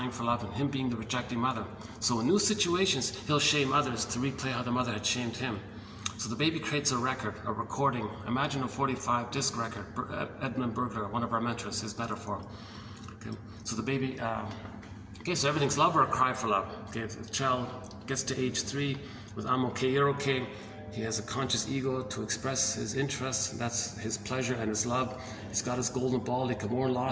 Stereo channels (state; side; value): identical; both; correlation 1.00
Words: for love and him being the rejecting mother. So in new situations, he'll shame others to replay how the mother had shamed him. So the baby creates a record, a recording. Imagine a 45 disc record. Edmund Burglar, one of our mentors, his metaphor. Okay. So the baby, okay, so everything's love or a cry for love. Okay, the child gets to age 3 with I'm okay, you're okay. He has a conscious ego to express his interests. That's his pleasure and his love. He's got his golden ball. He can mourn